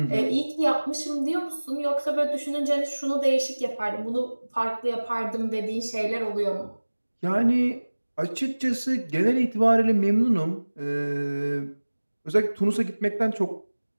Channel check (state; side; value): inverted; both; correlation -1.00